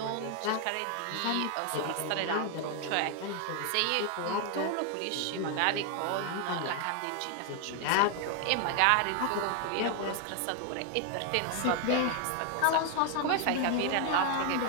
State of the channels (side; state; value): both; different; correlation 0.00